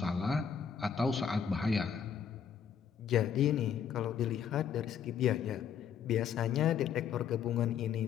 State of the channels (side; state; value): right; quieter; 7.8 dB